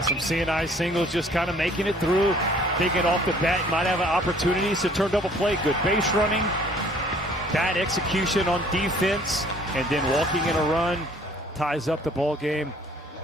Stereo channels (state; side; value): normal; both; correlation 0.57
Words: some CNI singles, just kind of making it through. Thinking off the bat, might have opportunities to turn double play. Good base running, bad execution on defense, and then walking in a run ties up the ball game.